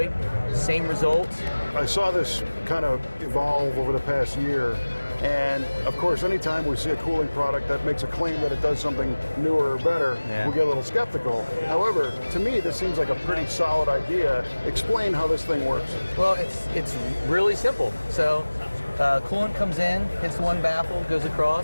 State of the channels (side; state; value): both; inverted; correlation -1.00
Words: Same results. I saw this kind of evolve over the past year. And of course, anytime we see a cooling product that makes a claim that it does something newer or better, we get a little skeptical. However, to me, this seems like a pretty solid idea. Explain how this thing works. Well, it's really simple. So coolant comes in, hits one baffle, goes